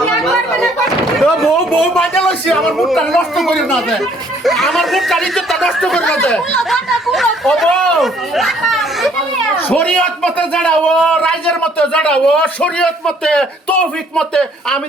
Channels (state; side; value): normal; both; correlation 0.62